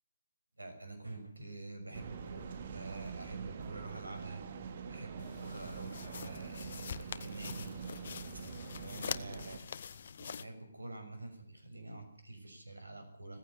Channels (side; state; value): both; inverted; correlation -0.75